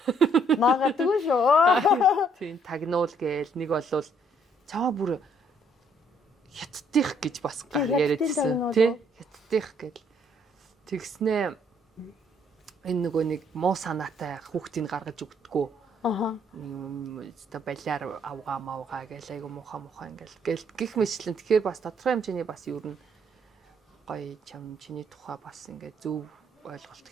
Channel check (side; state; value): both; normal; correlation 0.67